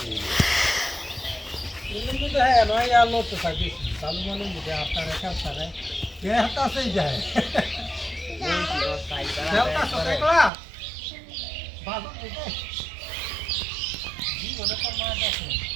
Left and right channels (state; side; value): drops out; left; at 10.5 s